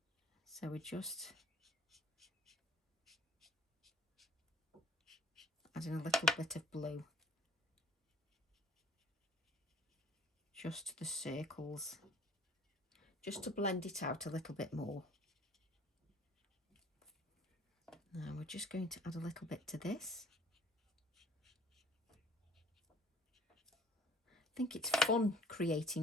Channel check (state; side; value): normal; both; correlation 0.54